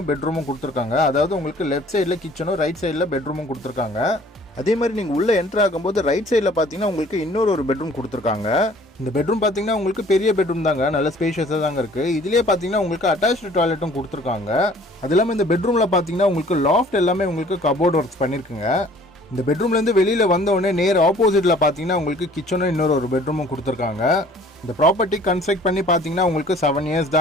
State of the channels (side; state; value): both; normal; correlation 0.53